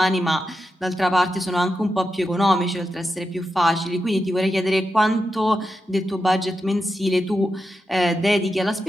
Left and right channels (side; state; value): both; normal; correlation 0.88